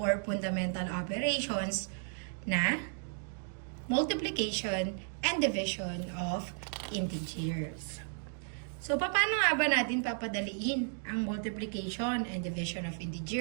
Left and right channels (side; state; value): left; silent; 55 dB below the other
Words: fundamental operations na multiplication and division of integers. So, paano nga ba natin papadaliin ang multiplication and division of